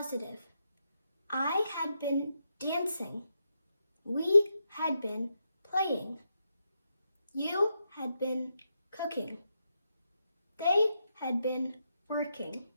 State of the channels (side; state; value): both; inverted; correlation -0.84